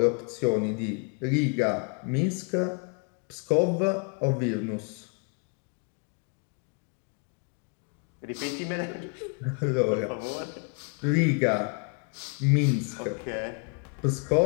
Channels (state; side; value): quieter; right; 37.0 dB